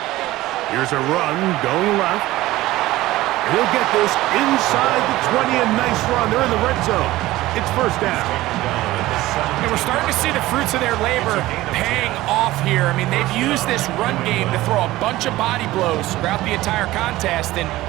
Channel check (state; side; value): quieter; left; 17.2 dB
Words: Here's a run going left. And he'll get this inside the 20. A nice run. They're in the red zone. It's first down. And we're starting to see the fruits of their labor paying off here. I mean, they've used this run game to throw a bunch of body blows throughout the entire contest. And